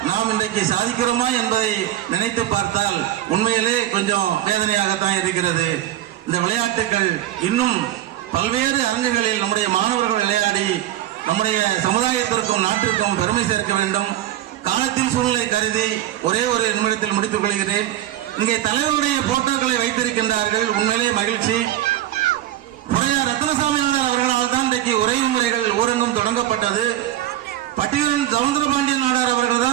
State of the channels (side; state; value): left; quieter; 13.4 dB